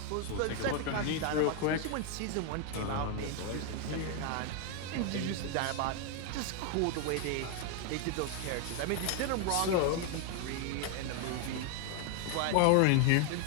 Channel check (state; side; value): different; both; correlation 0.01